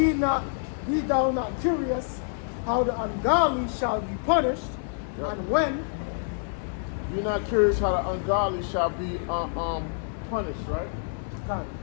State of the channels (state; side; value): silent; right; 60 dB below the other